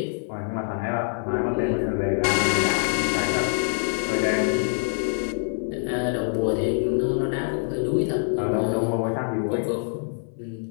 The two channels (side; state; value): right; silent; 62 dB below the other